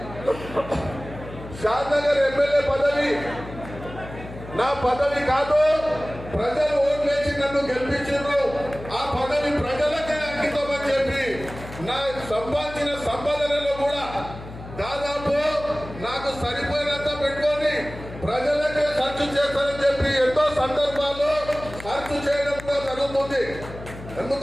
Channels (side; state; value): left; noise; hum, 14 dB below the sound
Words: షాద్నగర్ ఎమ్మెల్యే పదవి నా పదవి కాదు, ప్రజలు ఓట్లేసి నన్ను గెలిపించారు. ఆ పదవి జరుగుతుంది.